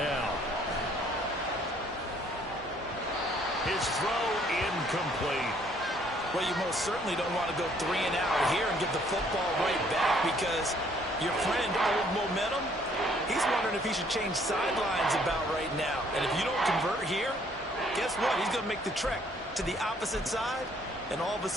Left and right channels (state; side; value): normal; both; correlation 0.63